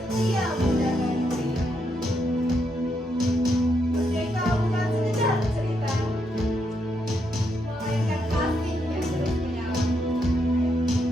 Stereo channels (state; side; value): normal; both; correlation 0.79